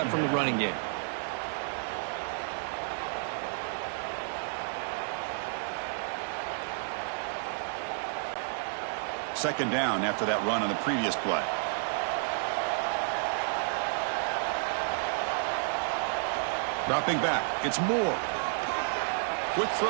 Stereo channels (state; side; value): silent; left; digital silence